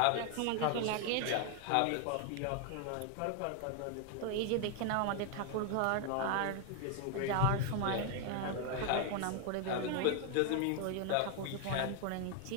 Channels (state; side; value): different; both; correlation 0.01